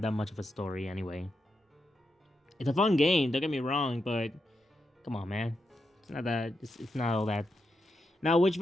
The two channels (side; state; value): both; normal; correlation 0.85